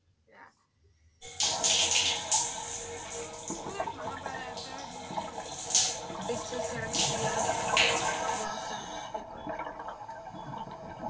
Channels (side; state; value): both; identical; correlation 1.00